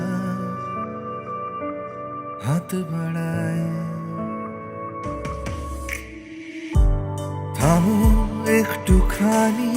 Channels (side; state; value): both; identical; correlation 1.00